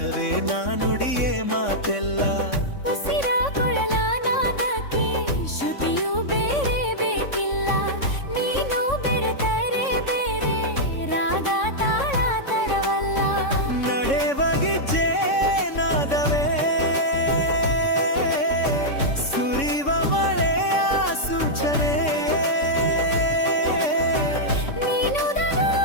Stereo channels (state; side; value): late; right; 3.6 ms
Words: ನಾ ನುಡಿಯೇ ಮಾತೆಲ್ಲ. ಉಸಿರ ಕೊಳಲ ನಾದಕ್ಕೆ ಶ್ರುತಿಯು ಬೇರೆ ಬೇಕಿಲ್ಲ. ನೀನು ಬೆರೆತರೆ ಬೇರೆ ರಾಗ ತಾಳ ತರವಲ್ಲ. ನಡೆವಗಿಜ್ಜೆ ನಾದವೇ ಸುರಿವ ಮಳೆಯ ಸೂಚನೆ. ನೀನು